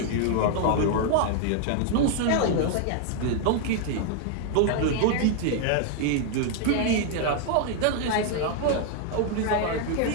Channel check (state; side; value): different; both; correlation 0.00